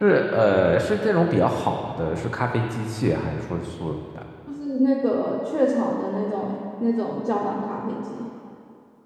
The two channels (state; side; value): identical; both; correlation 1.00